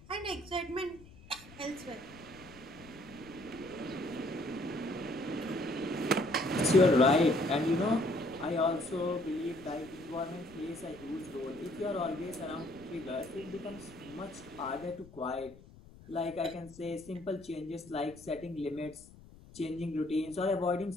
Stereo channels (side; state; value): left; noise; rumble, 21 dB below the sound